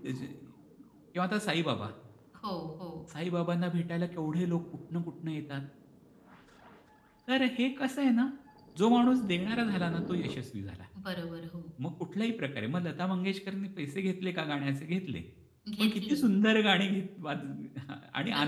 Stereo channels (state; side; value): identical; both; correlation 1.00